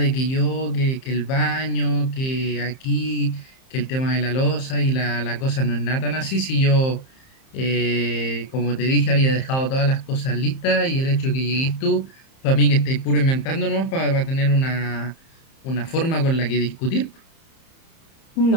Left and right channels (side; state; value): right; late; 30 ms